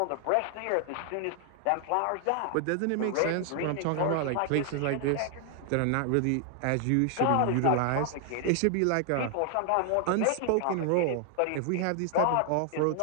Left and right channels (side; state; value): both; different; correlation 0.00